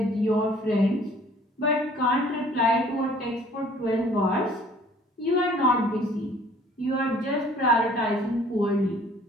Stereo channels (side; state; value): both; normal; correlation 0.54